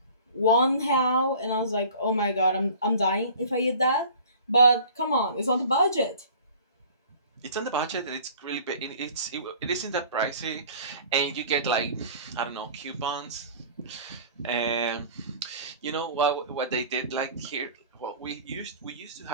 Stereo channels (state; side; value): inverted; both; correlation -0.45